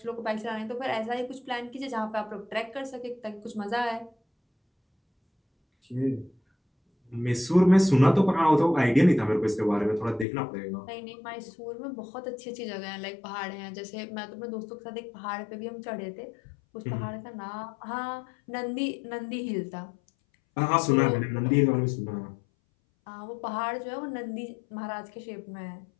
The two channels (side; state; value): right; drops out; at 10.2 s